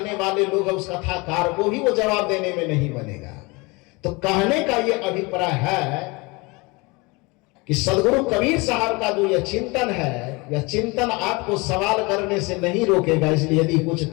वाले लोग हैं उस कथाकार को भी वो जवाब देने में नहीं बनेगा। तो कहने का ये अभिप्राय है कि सदगुरु कबीर साहब का जो यह चिंतन है, यह चिंतन आपको सवाल करने से नहीं रोकेगा। इसलिए यदि कुछ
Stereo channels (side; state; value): right; quieter; 26.1 dB